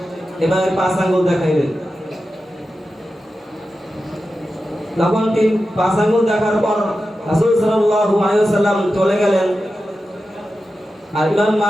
এভাবে 5 আঙ্গুল দেখাইলেন। তখন তিনি 5 আঙ্গুল দেখার পর রাসূল সাল্লাল্লাহু আলাইহি ওয়াসাল্লাম চলে গেলেন। আর ইমাম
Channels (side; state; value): both; normal; correlation 0.92